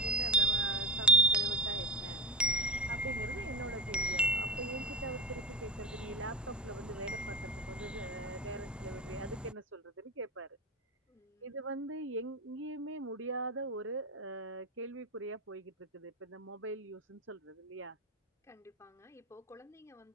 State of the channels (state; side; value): normal; both; correlation 0.29